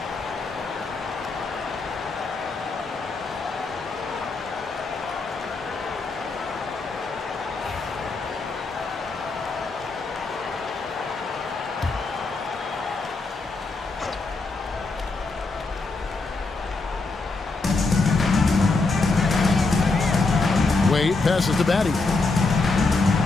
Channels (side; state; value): right; quieter; 3.7 dB